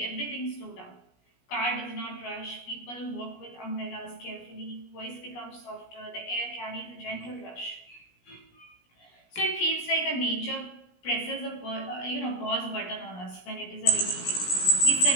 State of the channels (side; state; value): right; late; 17 ms